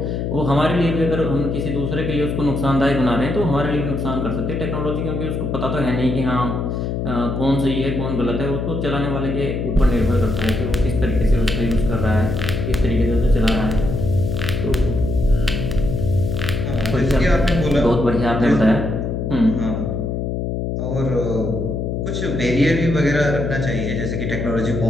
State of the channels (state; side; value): noise; left; hum, 2 dB below the sound